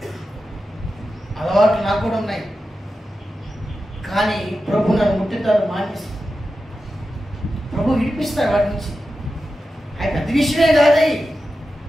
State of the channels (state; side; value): normal; both; correlation 0.91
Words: అలవాట్లు నాకు కూడా ఉన్నాయి. కానీ ప్రభు నన్ను ముట్టుతాడు, మానేసి ప్రభు విడిపిస్తాడు వాటి నుంచి. అవి పెద్ద విషయమే కాదవి,